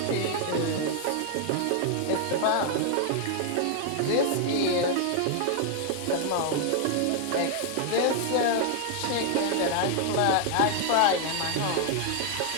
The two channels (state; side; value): different; both; correlation 0.00